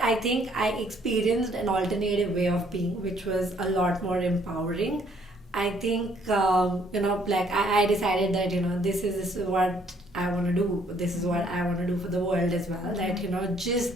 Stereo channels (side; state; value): both; normal; correlation 0.65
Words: I think I experienced an alternative way of being, which was a lot more empowering, I think, like I decided that, this is what I want to do. This is what I want to do for the world as well. That, just